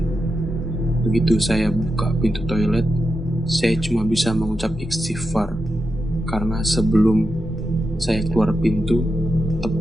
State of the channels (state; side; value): normal; both; correlation 0.88